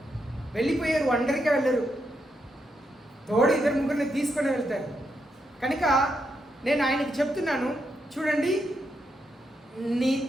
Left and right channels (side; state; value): both; normal; correlation 0.82